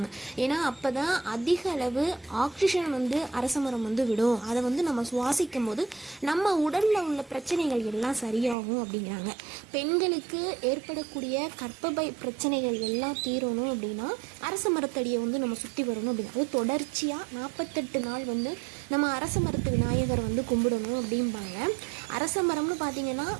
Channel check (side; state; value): left; drops out; at 8.6 s